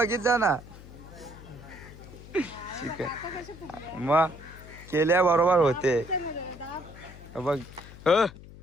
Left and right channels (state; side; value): noise; left; hum, 17 dB below the sound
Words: जा ना. शिकल मग केल्या बरोबर होते बघ.